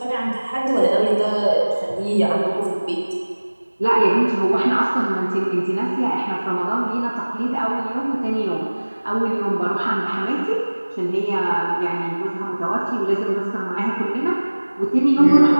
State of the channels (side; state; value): both; inverted; correlation -1.00